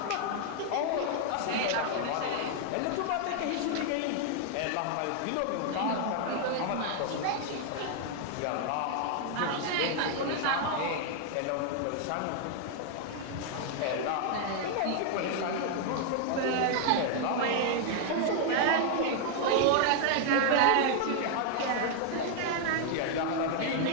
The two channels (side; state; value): both; different; correlation 0.00